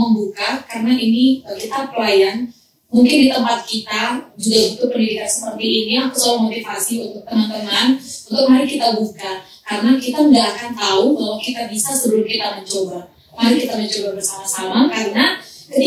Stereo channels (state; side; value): identical; both; correlation 1.00